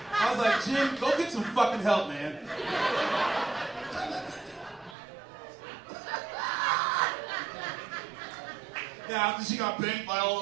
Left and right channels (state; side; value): drops out; left; at 5.0 s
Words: I was like, Jim, go get some fucking help, man. Yeah, after she got banged by all